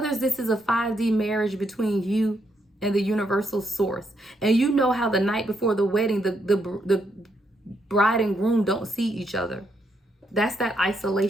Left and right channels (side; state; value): both; normal; correlation 0.77